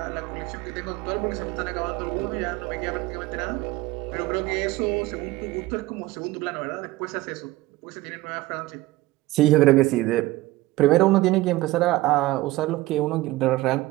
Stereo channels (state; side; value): quieter; left; 18.4 dB